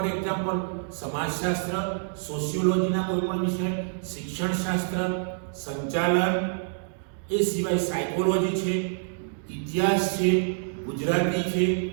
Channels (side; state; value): left; silent; digital silence